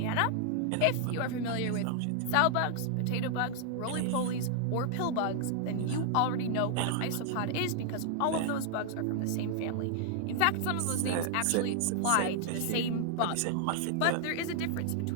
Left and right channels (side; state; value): both; different; correlation -0.01